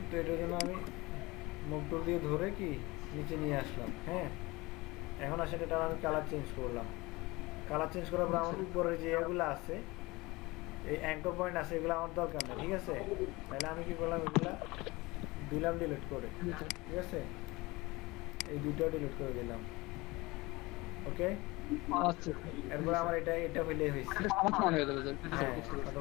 তো এটার জন্য আমি মুভ টুল দিয়ে ধরে কি নিচে নিয়ে আসলাম। হ্যাঁ এখন আসেন এটা আমি কালার চেঞ্জ করলাম, কালার চেঞ্জ করার পর আমার উপরে যে এগুলো আছে এই অ্যাঙ্কর পয়েন্ট আছে এগুলো আমার দরকার নেই, ঠিক আছে? তাহলে আমি কি করলাম, এগুলা দিলাম ডিলিট করে, ঠিক আছে? এই দুইটাও ডিলিট করে দিলাম, ওকে? এরপর আমার এটা হইলে হয়েছে, হ্যাঁ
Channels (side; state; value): right; quieter; 22.5 dB